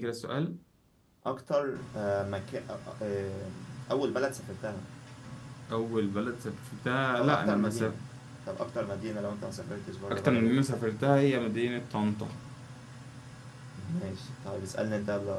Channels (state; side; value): identical; both; correlation 1.00